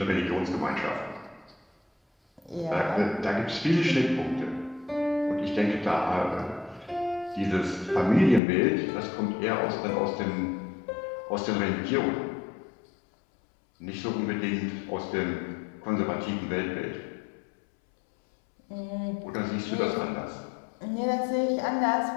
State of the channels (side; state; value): right; drops out; at 8.4 s